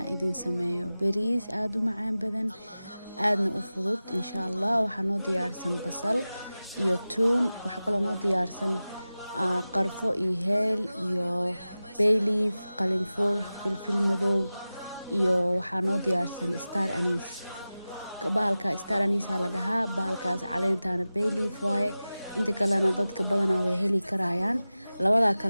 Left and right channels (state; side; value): inverted; both; correlation -0.96